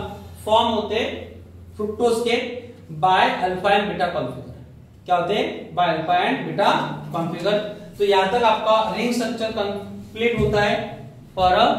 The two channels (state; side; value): identical; both; correlation 1.00